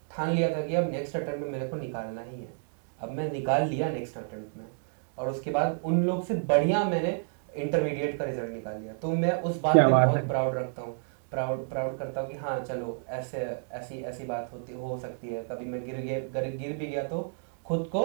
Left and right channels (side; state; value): left; silent; digital silence